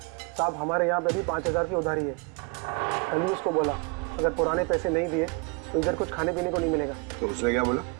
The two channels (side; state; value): left; quieter; 30.5 dB